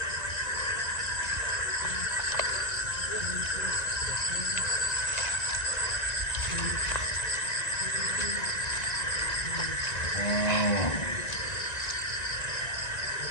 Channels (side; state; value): right; late; 1.9 ms